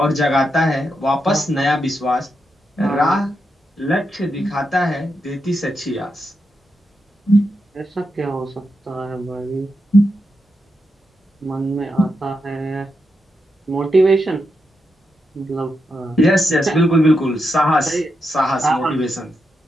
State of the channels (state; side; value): normal; both; correlation 0.85